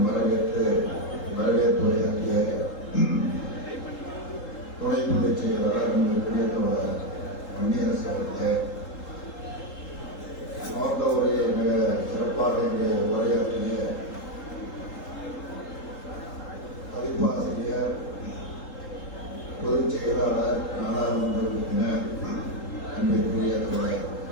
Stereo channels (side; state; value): right; late; 3.8 ms